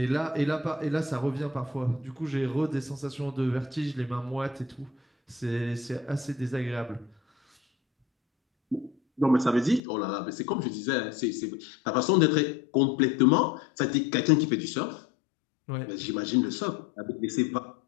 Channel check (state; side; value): drops out; right; at 9.8 s